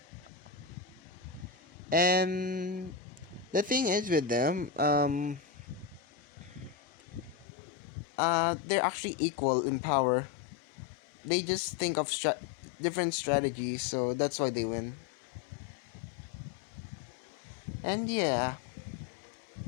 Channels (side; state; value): right; drops out; at 7.5 s